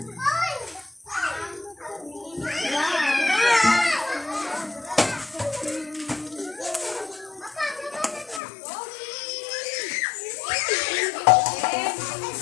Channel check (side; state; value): right; drops out; at 8.4 s